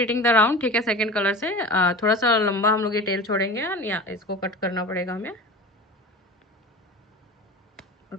the round, ठीक है, सेकंड कलर से थोड़ा सा लंबा हम लोग ये टेल छोड़ेंगे या इसको कट करना पड़ेगा हमें,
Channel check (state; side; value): normal; both; correlation 0.34